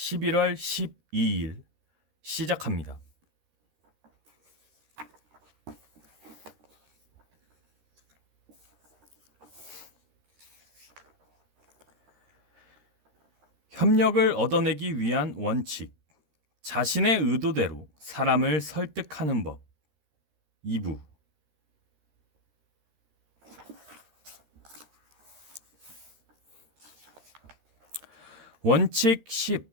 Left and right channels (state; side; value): late; left; 13 ms